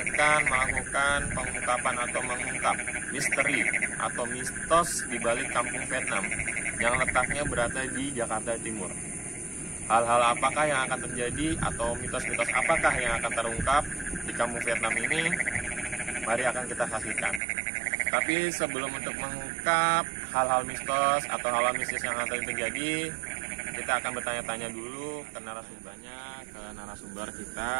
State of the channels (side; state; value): left; drops out; at 17.4 s